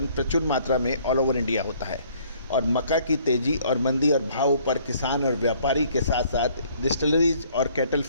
प्रचुर मात्रा में ऑल ओवर इंडिया होता है। और मक्का की तेज़ी और मंदी और भाव पर किसान और व्यापारी के साथ साथ डिस्टिलरीज और कैटल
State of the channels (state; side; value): inverted; both; correlation -0.60